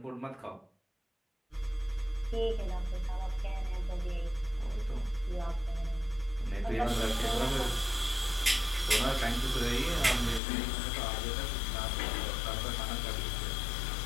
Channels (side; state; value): right; drops out; at 10.4 s